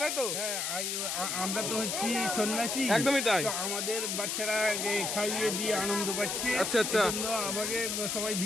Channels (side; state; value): left; noise; hiss, 1 dB below the sound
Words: তাই তো আমরা তো হচ্ছি সন্ন্যাসী একদমই তাই আমাদের বাচ্চারা খাইয়ে দিয়ে আনন্দ পাচ্ছে আচ্ছা আচ্ছা আমাকে সবাই